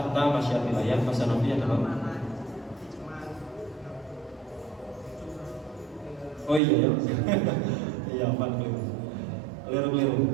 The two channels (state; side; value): drops out; left; at 6.6 s